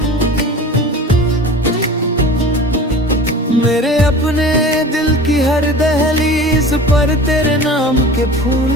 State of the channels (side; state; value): both; normal; correlation 0.38